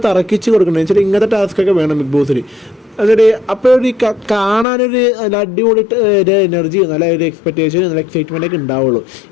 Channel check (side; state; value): right; drops out; at 4.7 s